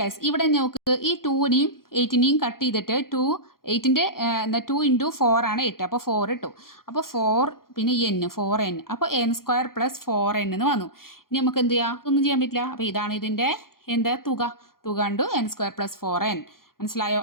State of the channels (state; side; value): late; right; 0.92 ms